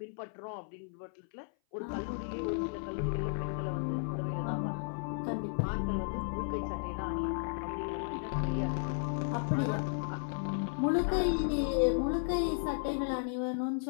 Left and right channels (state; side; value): silent; right; 55 dB below the other